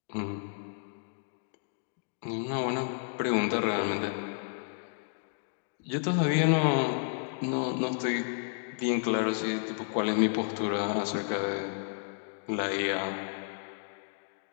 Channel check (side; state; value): right; silent; digital silence